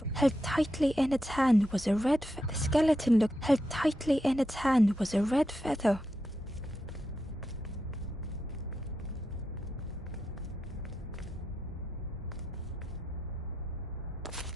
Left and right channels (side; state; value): both; normal; correlation 0.86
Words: Held tightly in its hand was a red feather. The skeleton looked held tightly in its hand was a red feather.